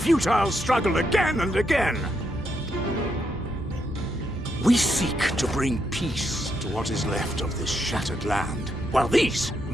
struggle again and again? We seek to bring peace to what is left of this shattered land, while these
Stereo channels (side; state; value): both; normal; correlation 0.79